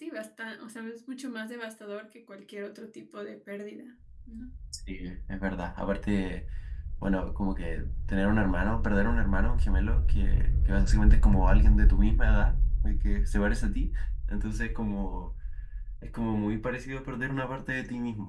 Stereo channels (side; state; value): both; identical; correlation 1.00